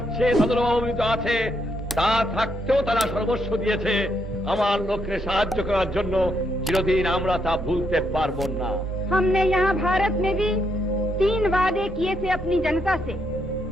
তাদেরও অভাবিত আছে। তা থাকতেও তারা সর্বস্ব দিয়েছে আমার লোককে সাহায্য করার জন্য। চিরদিন আমরা তা ভুলতে পারবো না। हमने यहाँ भारत में भी 3 वादे किए थे अपनी जनता से।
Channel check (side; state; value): both; normal; correlation 0.76